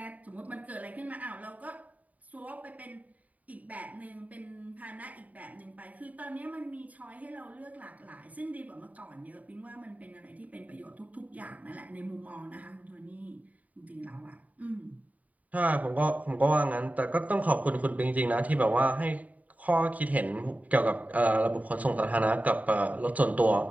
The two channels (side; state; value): left; late; 0.072 ms